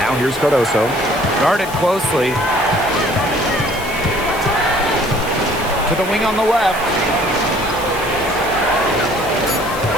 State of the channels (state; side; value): noise; left; hiss, 15 dB below the sound